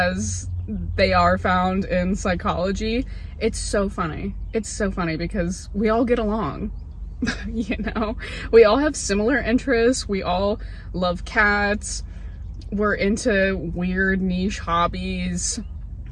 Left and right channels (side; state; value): both; identical; correlation 1.00